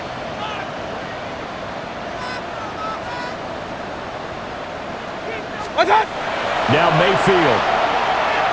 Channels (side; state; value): both; identical; correlation 1.00